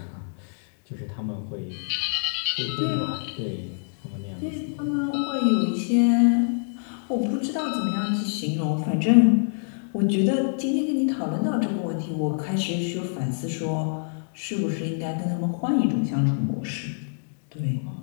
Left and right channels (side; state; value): right; silent; digital silence